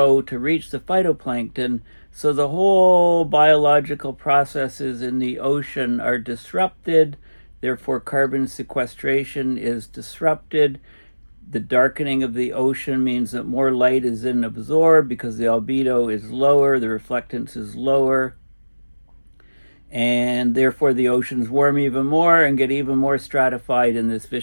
to reach the phytoplankton. So the whole biological processes in the ocean are disrupted, therefore carbon sequestration is disrupted. The darkening of the ocean means that more light is then absorbed because the albedo is lower, the reflectance is lower, and therefore the oceans warm even more and get even more stratified in this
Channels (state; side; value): inverted; both; correlation -1.00